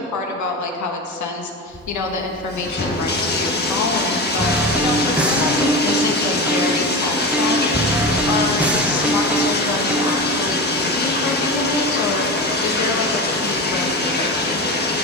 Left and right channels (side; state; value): both; normal; correlation 0.24